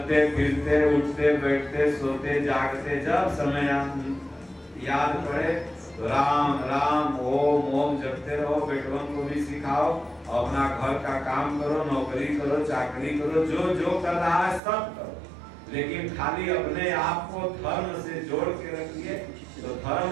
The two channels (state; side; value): drops out; left; at 14.6 s